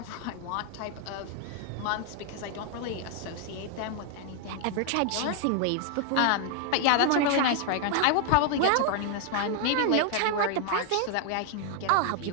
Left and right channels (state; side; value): different; both; correlation 0.00